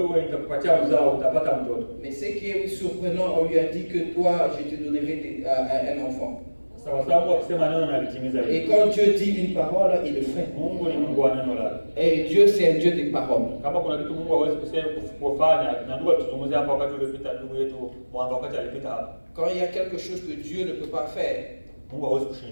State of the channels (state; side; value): inverted; both; correlation -1.00